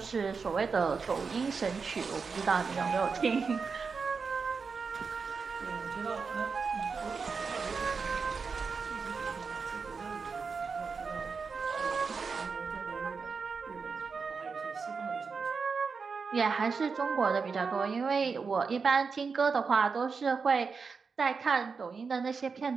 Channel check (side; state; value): left; quieter; 5.1 dB